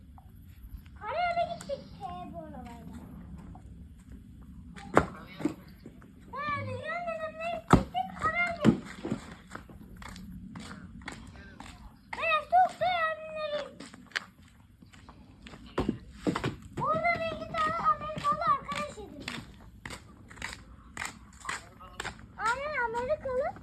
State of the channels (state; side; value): identical; both; correlation 1.00